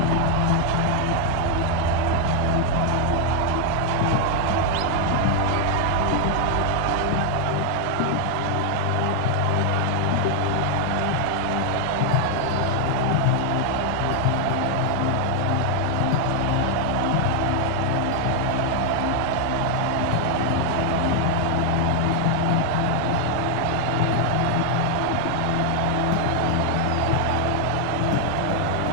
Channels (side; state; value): both; different; correlation 0.00